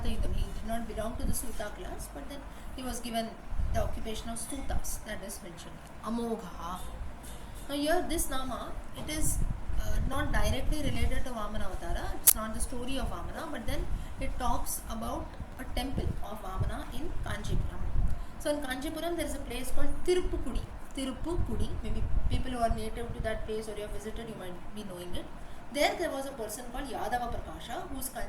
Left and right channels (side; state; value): both; identical; correlation 1.00